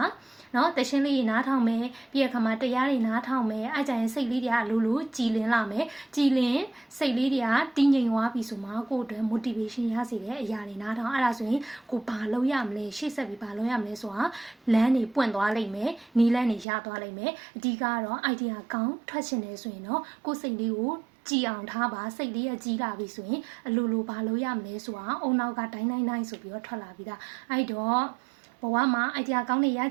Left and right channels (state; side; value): drops out; left; at 16.7 s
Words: နော်တရှင်းလေးနားထောင်မယ်ပြီးရခါမှာတရားတွေနားထောင်မယ်အဲ့ကြရင်စိတ်လေးတွေကလူလူကြည်လင်လာမယ်ကြည်လင်စိတ်လေးတွေကတည်ငြိမ်သွားပြီဆိုမှကိုယ့်အတွက် motivation ရစေတဲ့အရာတွေနားထောင်အဲ့ဒါဆိုရင်ကိုဘာလုပ်ရမလဲရှေ့ဆက်ပြီးဘာလုပ်ရမလဲဆိုတာလမ်းတွေပွင့်သွားလိမ့်မယ်နီးလမ်းတွေရသွားလိမ့်မယ်အဓိကတော့ idea ကောင်းထွက်ချင်တယ်ဆိုရင်တော့ကိုယ်စိတ်လေးကိုကြည်အောင်ထားပါစိတ်လေးရကြီးလာပြီဆိုရင်အလိုလိုဘာလုပ်ရမလဲဆိုတာအုံနောက်ကတိုင်းဆိုပြီးတော့ထွက်လာပြီဒါအဲ့တော့ဘဝမှာ idea ကောင်းနေရ